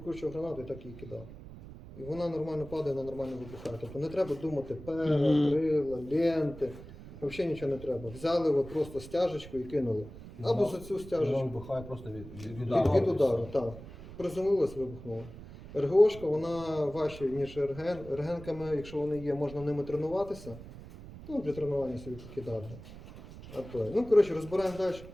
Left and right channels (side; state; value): right; noise; rumble, 15 dB below the sound